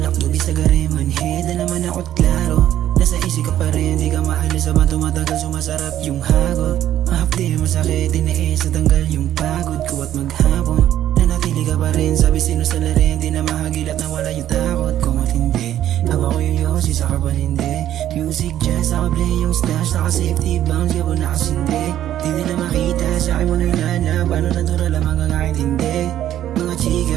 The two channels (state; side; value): quieter; left; 11.8 dB